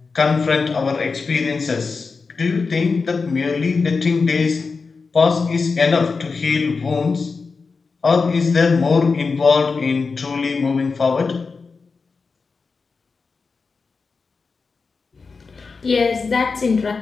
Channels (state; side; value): quieter; right; 4.6 dB